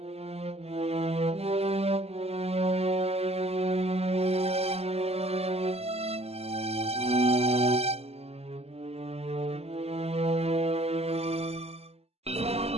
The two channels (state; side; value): late; left; 0.29 ms